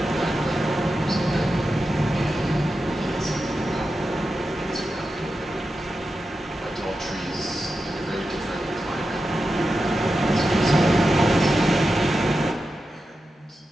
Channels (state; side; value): normal; both; correlation 0.91